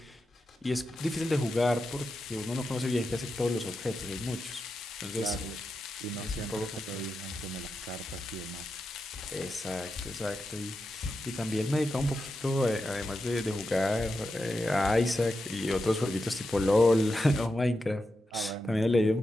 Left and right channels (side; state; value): both; normal; correlation 0.88